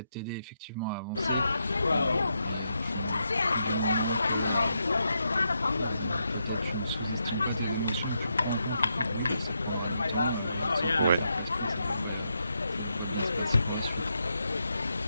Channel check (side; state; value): both; inverted; correlation -0.82